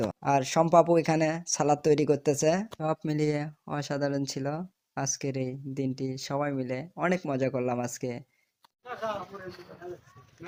আর সম্পাপু এখানে সালাদ তৈরি করতেছে। সব মিলিয়ে অসাধারণ ছিল আজকের এই দিনটি। সবাই মিলে অনেক মজা করলাম আজকে।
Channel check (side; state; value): both; identical; correlation 1.00